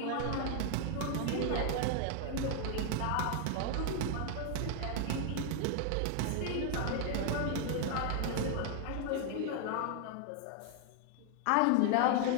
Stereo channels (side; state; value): both; different; correlation 0.00